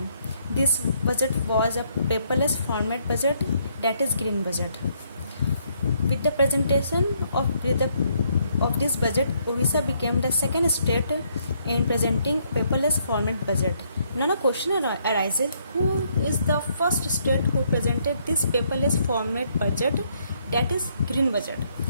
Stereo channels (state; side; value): inverted; both; correlation -0.71